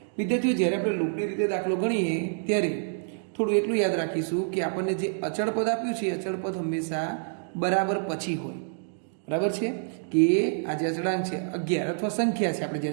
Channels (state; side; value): silent; left; digital silence